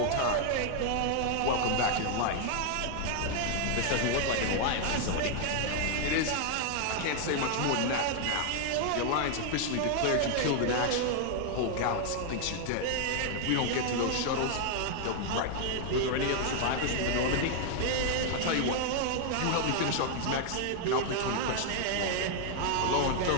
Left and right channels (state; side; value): different; both; correlation 0.00